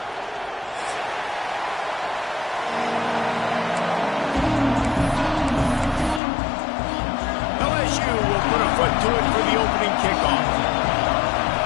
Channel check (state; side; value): drops out; right; at 6.2 s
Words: LSU will put a foot to it for the opening kickoff.